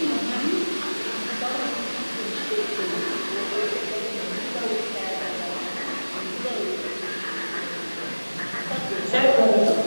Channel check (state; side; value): inverted; both; correlation -1.00